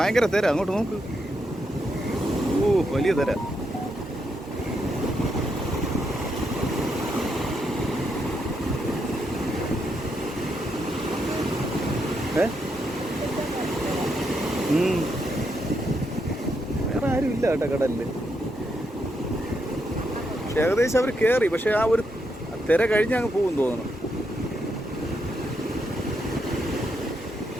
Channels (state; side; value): normal; both; correlation 0.80